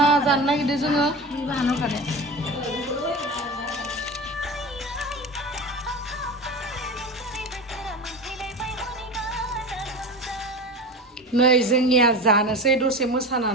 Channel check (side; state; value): both; normal; correlation 0.29